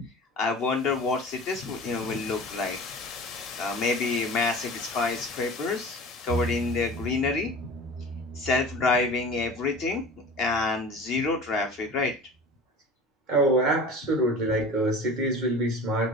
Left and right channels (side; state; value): both; normal; correlation 0.38